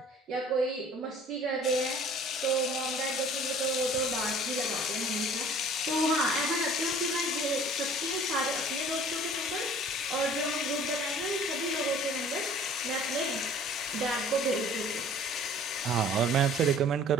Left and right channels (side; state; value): both; normal; correlation 0.50